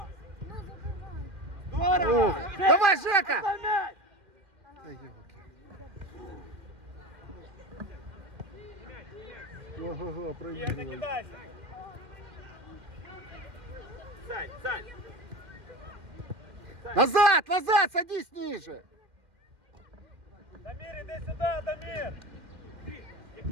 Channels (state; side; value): late; left; 1.9 ms